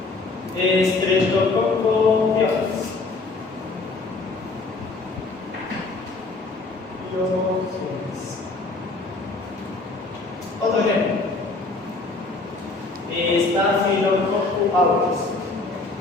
Streptococcus pyogenes. Otro ejemplo, Staphylococcus aureus.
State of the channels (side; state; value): right; quieter; 3.5 dB